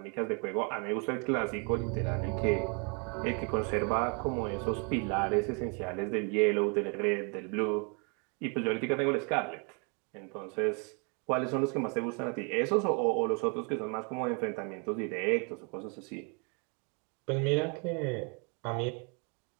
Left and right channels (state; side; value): quieter; left; 35.4 dB